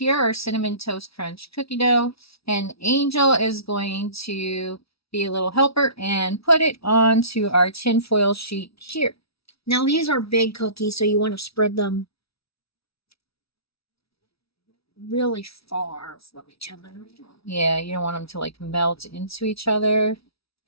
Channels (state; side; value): late; right; 0.76 ms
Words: our Cinnamon Toast Crunch cookie dough, and Angel is going to be a little helper and put it onto our tinfoil sheet here. Now these are big cookies, so you want to spread them really far from each other. Yeah, you don't want them to like melt into each other.